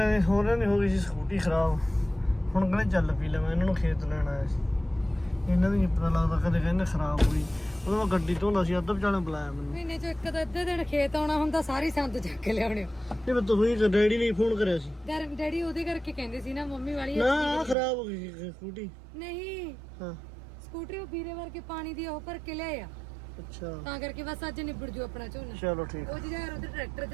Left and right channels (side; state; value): left; drops out; at 17.8 s